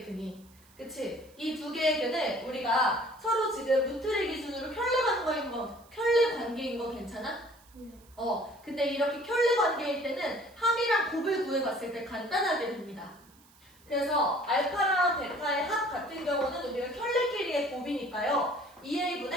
근이. 그치? 이 두 개의 근을 우리가 서로 지금 루트를 기준으로 켤레 관계인 거 괜찮아? 네. 근데 이렇게 켤레 관계일 때는 합이랑 곱을 구해봤을 때 간단하게 됩니다. 그래서 알파랑 베타의 합 같은 경우는 우리가 켤레끼리의 곱이니까요.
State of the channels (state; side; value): noise; right; hiss, 28 dB below the sound